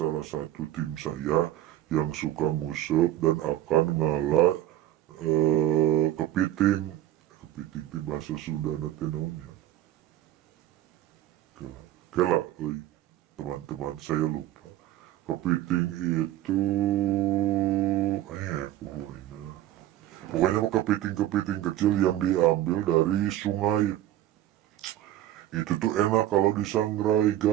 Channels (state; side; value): quieter; left; 13.4 dB